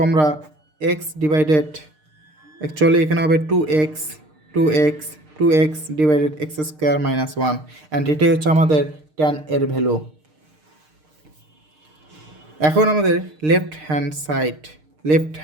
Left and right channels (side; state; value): left; late; 6.5 ms